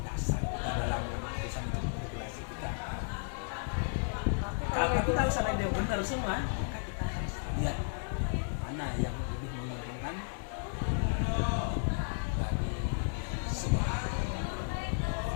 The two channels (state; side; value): silent; right; digital silence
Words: dasar kita dalam keputusan itu regulasi kita. Tapi kalau seandainya dia benar semua, maka kita harus lihat mana yang lebih menguntungkan bagi semua.